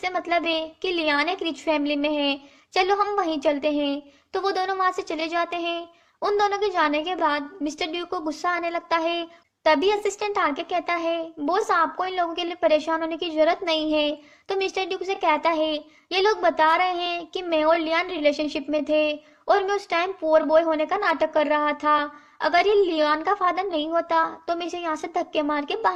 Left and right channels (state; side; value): identical; both; correlation 1.00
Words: मतलब है कि लियान एक रिच फैमिली में है, चलो हम वहीं चलते हैं। तो वो दोनों वहां से चले जाते हैं। उन दोनों के जाने के बाद मिस्टर ड्यूक को गुस्सा आने लगता है। तभी असिस्टेंट आके कहता है बॉस आपको इन लोगों के लिए परेशान होने की जरूरत नहीं है। तो मिस्टर ड्यूक से कहता है ये लोग बता रहे हैं कि मैं और लियान रिलेशनशिप में थे और मैं उस टाइम पुअर बॉय होने का नाटक कर रहा था। अगर ये लियान का फादर नहीं होता तो मैं इसे यहाँ से धक्के मार के